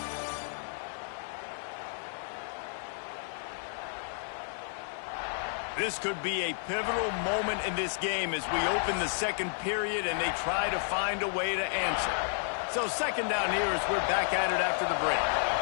This could be a pivotal moment in this game as we open the second period and they try to find a way to answer. So second down here as we're back at it after the break.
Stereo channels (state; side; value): silent; right; 57 dB below the other